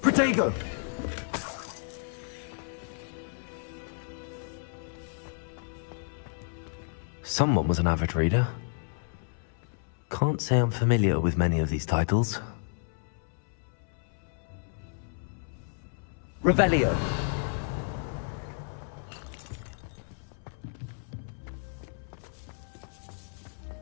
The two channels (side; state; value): right; silent; 57 dB below the other